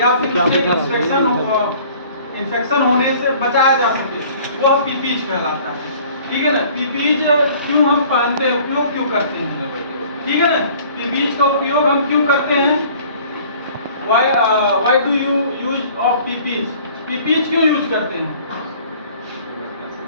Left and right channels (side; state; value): both; inverted; correlation -0.52